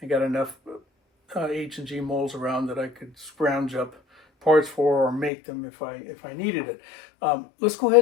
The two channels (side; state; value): right; drops out; at 5.3 s